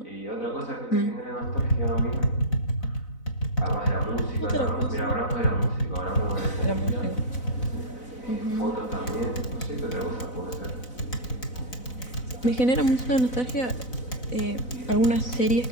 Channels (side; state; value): right; late; 4.0 ms